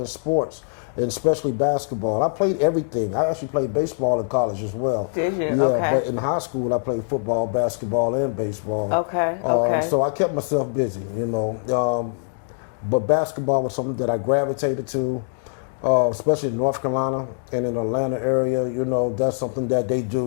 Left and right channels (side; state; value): right; silent; 63 dB below the other